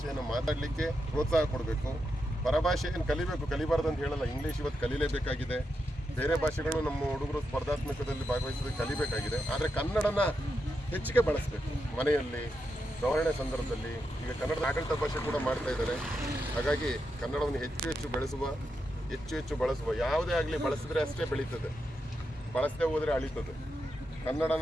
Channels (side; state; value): both; normal; correlation 0.85